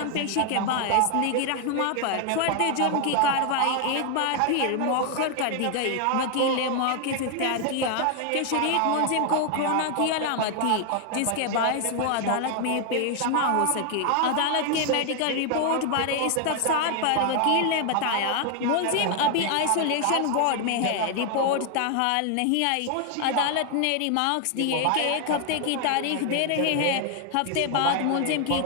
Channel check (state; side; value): different; both; correlation 0.00